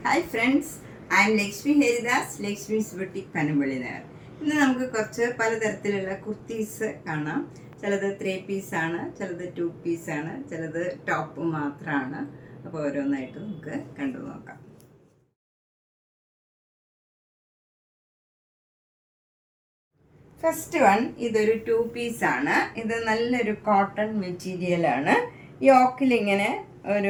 Hi friends, I M Lakshmi Haridas, Lakshmi's boutique Panampilly Nagar. ഇന്ന് നമുക്ക് കുറച്ച് പലതരത്തിലുള്ള കുർത്തീസ് കാണാം. ചിലത് 3 പീസാണ്, ചിലത് 2 പീസാണ്, ചിലത് ടോപ്പ് മാത്രമാണ്. അപ്പോൾ ഓരോന്നായിട്ട് നമുക്ക് കണ്ടു നോക്കാം. ഫസ്റ്റ് വൺ, ഇതൊരു 2 പീസാണ്. ഇത് നല്ലൊരു കോട്ടൺ മെറ്റീരിയലാണ്. യോക്കിലിങ്ങനെ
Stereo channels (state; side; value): identical; both; correlation 1.00